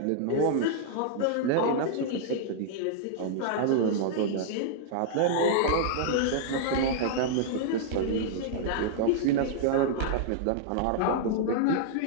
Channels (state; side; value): different; both; correlation -0.01